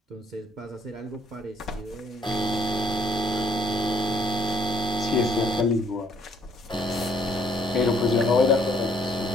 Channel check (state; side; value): normal; both; correlation 0.66